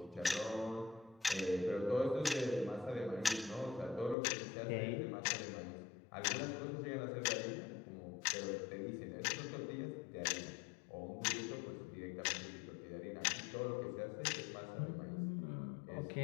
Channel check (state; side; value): drops out; right; at 4.2 s